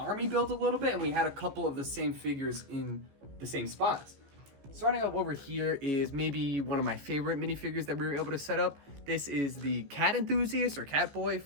build a little bit, and we had a couple of the same figures in the same spots. Starting up over here is maybe one of my favorite minifigures that we were able to set up. This is the cat enthusiast or cat boy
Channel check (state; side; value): late; left; 15 ms